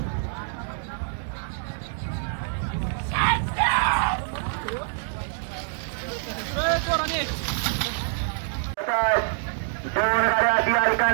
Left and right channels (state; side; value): silent; left; digital silence